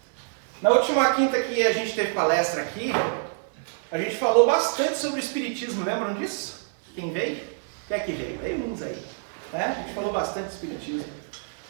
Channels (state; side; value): silent; left; 58 dB below the other